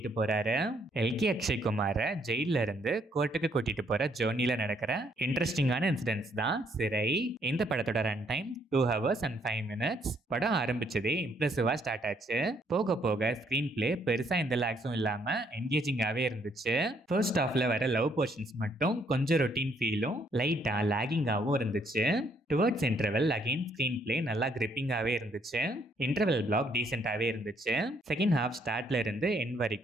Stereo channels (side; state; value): both; normal; correlation 0.69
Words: போறாரு. எல்கே அக்ஷய்குமார ஜெயில இருந்து கோர்ட்டுக்கு கூட்டிட்டு போற ஜேர்னில நடக்கிற இன்ட்ரெஸ்டிங்கான இன்சிடென்ட்ஸ் தான் சிறை. இந்த படத்தோட run time 2 hours and 5 minutes. படம் ஆரம்பிச்சதே இம்ப்ரெசிவா ஸ்டார்ட் ஆச்சு. போக போக ஸ்கிரீன் பிளே பெருசா எந்த லாக்ஸும் இல்லாம என்கேஜிங்காவே இருந்துச்சு. ஃபர்ஸ்ட் ஹாஃப்ல வர லவ் போர்ஷன்ஸ் மட்டும் கொஞ்சம் ரொட்டீன் ஃபீலும் லைட்டா லாகிங்காவும் இருந்துச்சு. Towards interval again screen play நல்லா கிரிப்பிங்காவே இருந்துச்சு. இன்டர்வெல் பிளாக் டீசென்டாவே இருந்துச்சு. செகண்ட் ஹாஃப் ஸ்டார்ட்ல இருந்து எண்ட்